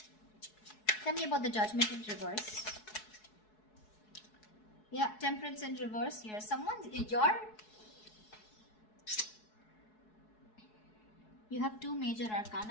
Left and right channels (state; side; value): late; right; 4.7 ms